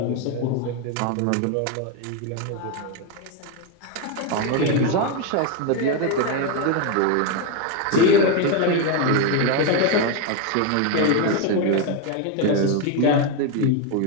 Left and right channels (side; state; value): both; different; correlation 0.02